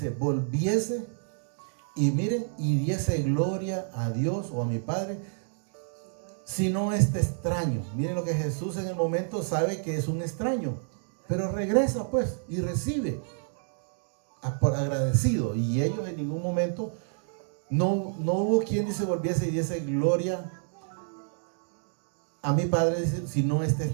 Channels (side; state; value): left; silent; digital silence